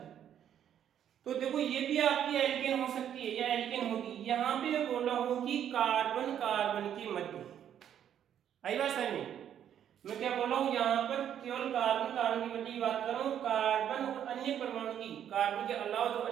तो देखो ये भी आपकी एल्केन हो सकती है या एल्केन होगी। यहाँ पे मैं बोल रहा हूँ कि कार्बन कार्बन के मध्य, आई बात समझ में। मैं क्या बोल रहा हूँ, यहाँ पर केवल कार्बन कार्बन के मध्य की बात कर रहा हूँ, कार्बन और अन्य परमाणु की, कार्बन के अलावा जो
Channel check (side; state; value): left; quieter; 9.7 dB